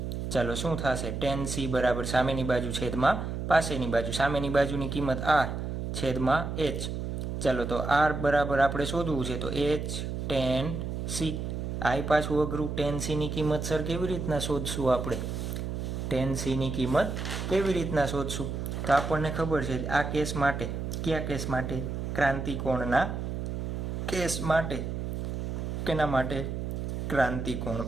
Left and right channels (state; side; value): noise; right; hum, 4 dB below the sound